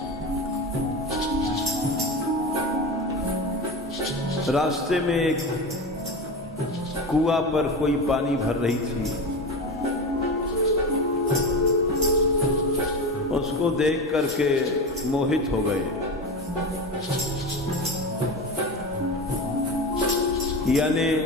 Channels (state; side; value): normal; both; correlation 0.24